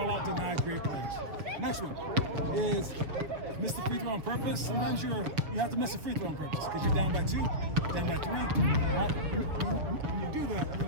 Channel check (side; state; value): left; late; 6.9 ms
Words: out deny great players. Next one is miss the free throw on purpose. Sometimes you have to miss a free throw on purpose because you're down by 2, down by 3. Right? When you do that, you're